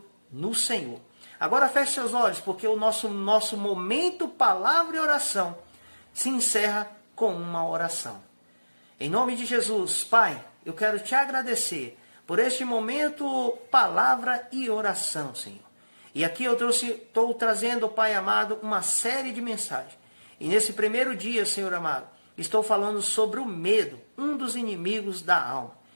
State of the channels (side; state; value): both; inverted; correlation -1.00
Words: no Senhor. Agora feche seus olhos, porque o nosso momento, palavra e oração, se encerra com uma oração. Em nome de Jesus, Pai, eu quero te agradecer por este momento, palavra e oração, Senhor. E aqui eu estou trazendo, Pai amado, uma série de mensagens. E nesse primeiro dia, Senhor amado, estou falando sobre o medo, um dos inimigos da alma.